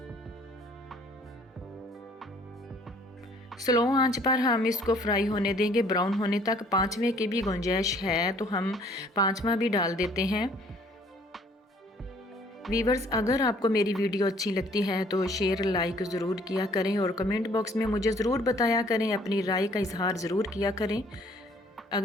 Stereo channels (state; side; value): normal; both; correlation 0.59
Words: स्लो आंच पर हम इसको फ्राई होने देंगे, ब्राउन होने तक। 5वें की भी गुंजाइश है तो हम 5वां भी डाल देते हैं। वीवर्स, अगर आपको मेरी वीडियो अच्छी लगती है तो शेयर लाइक ज़रूर किया करें और कमेंट बॉक्स में मुझे ज़रूर बताया करें, अपनी राय का इजहार ज़रूर किया करें।